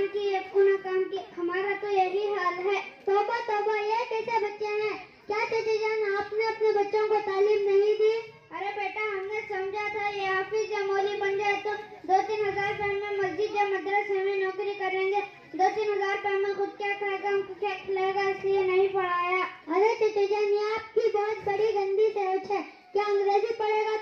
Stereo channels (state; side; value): identical; both; correlation 1.00